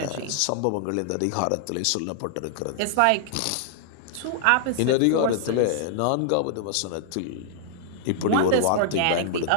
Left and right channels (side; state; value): both; different; correlation -0.01